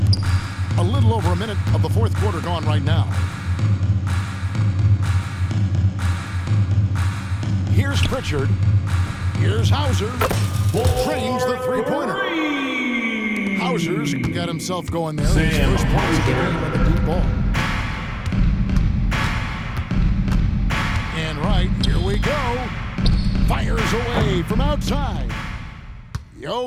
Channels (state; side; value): identical; both; correlation 1.00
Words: A little over a minute of the fourth quarter gone right now. Here's Pritchard. Here's Hauser. Trains the three-pointer. Hauser's got himself going there. His Sam first points of the Hauser. game with a deep ball. And right, here we go. Fires away from outside.